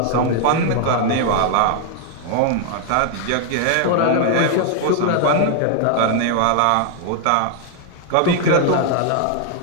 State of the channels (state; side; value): different; both; correlation 0.00